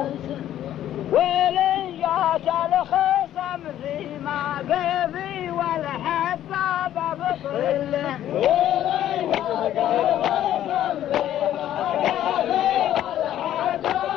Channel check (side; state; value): right; quieter; 11.9 dB